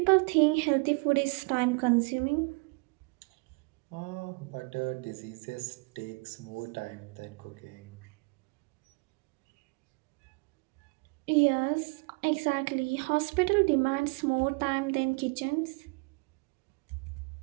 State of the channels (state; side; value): quieter; left; 30.5 dB